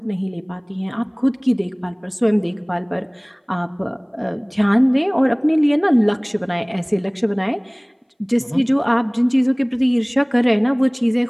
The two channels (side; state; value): both; identical; correlation 1.00